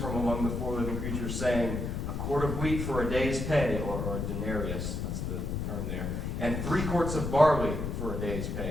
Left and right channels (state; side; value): noise; left; rumble, 3 dB below the sound